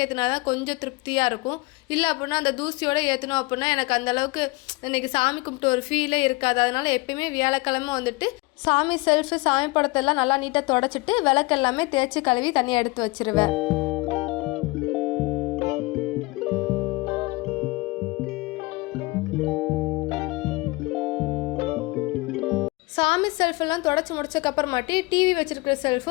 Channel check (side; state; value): right; quieter; 24.1 dB